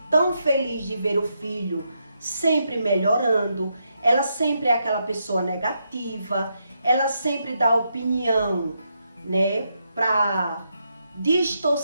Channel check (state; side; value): inverted; both; correlation -0.81